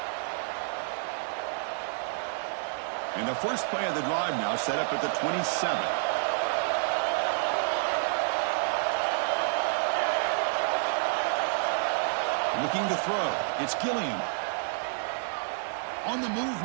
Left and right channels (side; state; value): left; silent; digital silence